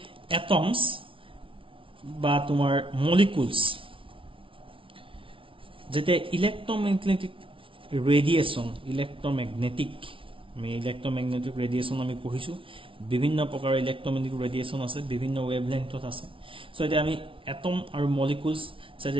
atoms বা তোমাৰ molecules যেতে ইলেক্ট্ৰomagnetic ৰেডিয়েশন ইলেক্ট্ৰomagnetic ৰেডিয়েশন আমি পঢ়িছো বিভিন্ন প্ৰকাৰৰ ইলেক্ট্ৰomagnetic ৰেডিয়েশন আছে বিভিন্ন ওয়েভলেংথত আছে সো এটা আমি এটম আৰু মলিকুলস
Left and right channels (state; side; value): late; left; 0.25 ms